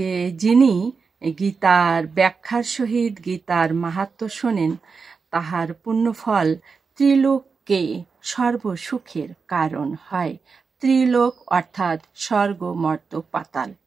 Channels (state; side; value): quieter; left; 5.0 dB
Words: যিনি গীতার ব্যাখ্যার সহিত গীতার মাহাত্ম্য শোনেন, তাহার পুণ্যফল ত্রিলোককে সর্বসুখের কারণ হয়। ত্রিলোক অর্থাৎ স্বর্গ, মর্ত, পাতাল।